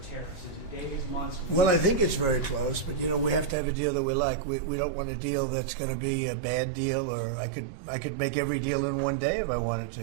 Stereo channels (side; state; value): left; drops out; at 3.6 s